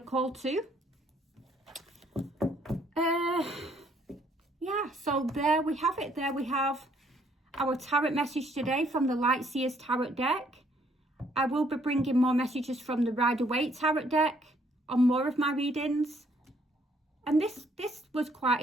to. Yeah, so there we have it. There we have our tarot message today from the Light Seers Tarot deck. I will be bringing more messages from the Rider-Waite Tarot deck on more of my readings. And this was quite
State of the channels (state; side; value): normal; both; correlation 0.66